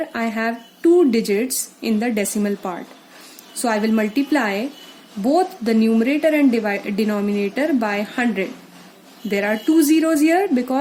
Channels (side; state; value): both; identical; correlation 1.00